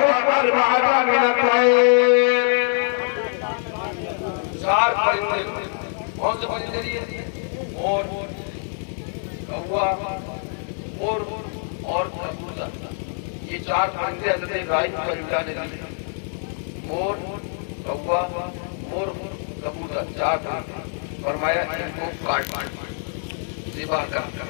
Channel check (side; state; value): right; silent; digital silence